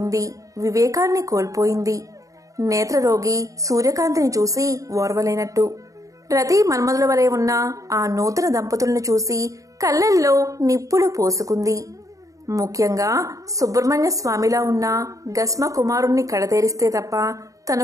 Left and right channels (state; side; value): late; left; 0.16 ms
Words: వివేకాన్ని కోల్పోయింది. నేత్రరోగి సూర్యకాంతిని చూసి ఓర్వలేనట్టు రతి మన్మధుల వలె ఉన్న ఆ నూతన దంపతులను చూసి కళ్ళల్లో నిప్పులు పోసుకుంది. ముఖ్యంగా సుబ్రహ్మణ్య స్వామిలా ఉన్న గస్మ కుమారుణ్ణి కడతేరిస్తే తప్ప